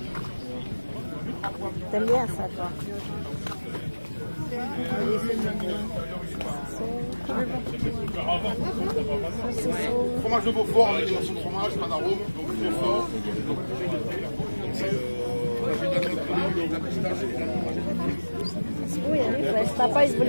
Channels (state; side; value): inverted; both; correlation -1.00